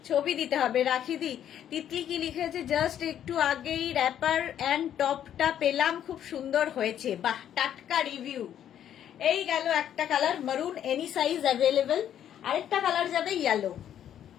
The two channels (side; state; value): right; quieter; 10.2 dB